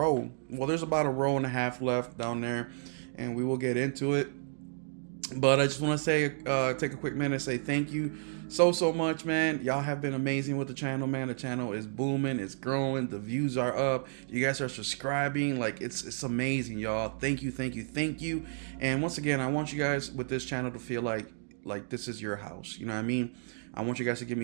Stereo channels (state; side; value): silent; left; digital silence